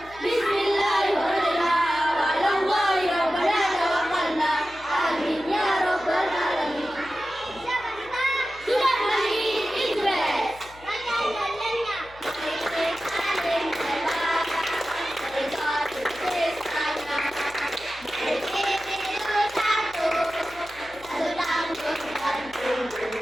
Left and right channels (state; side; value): noise; left; hum, 22 dB below the sound